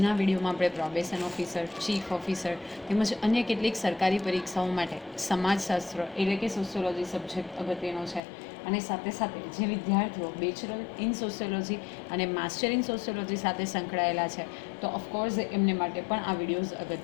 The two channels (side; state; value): right; drops out; at 8.2 s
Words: વિડીયોમાં આપણે પ્રોબેશન ઓફિસર, ચીફ ઓફિસર તેમજ અન્ય કેટલીક સરકારી પરીક્ષાઓ માટે સમાજશાસ્ત્ર એટલે કે સોશિયોલોજી સબ્જેક્ટ અગત્યનો છે. અને સાથે સાથે જે વિદ્યાર્થીઓ બેચલર ઇન સોશિયોલોજી અને માસ્ટર ઇન સોશિયોલોજી સાથે સંકળાયેલા છે તો ઓફકોર્સ એમને માટે પણ આ વિડીયોઝ